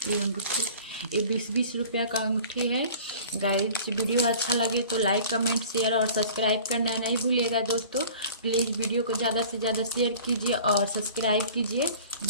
ये अंगूठी। ये 20-20 रुपया का अंगूठी है गाइस। वीडियो अच्छा लगे तो लाइक कमेंट शेयर और सब्सक्राइब करना नहीं भूलिएगा दोस्तों। प्लीज़ वीडियो को ज़्यादा से ज़्यादा शेयर कीजिए और सब्सक्राइब कीजिए।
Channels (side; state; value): both; inverted; correlation -0.45